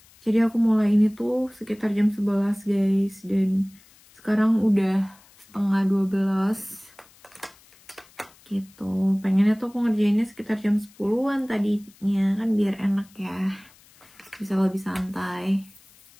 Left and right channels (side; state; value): left; noise; hiss, 27 dB below the sound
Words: Jadi aku mulai ini tuh sekitar jam 11 guys, dan sekarang udah 11:30 gitu. Pengennya tuh aku ngerjainnya sekitar jam 10-an tadinya, kan biar enak ya, bisa lebih santai.